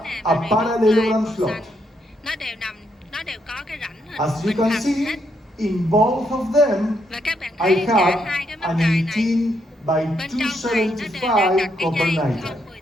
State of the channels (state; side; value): normal; both; correlation 0.77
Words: nè a và parallelogram màu slot. xanh. Nó đều có cái rãnh hình As you bình can hành see, hết. in both of them, Và các bạn I thấy cả have hai cái mắc an cài này 18 by bên trong này nó đều đang 275 đặt cái copper dây nitride, 018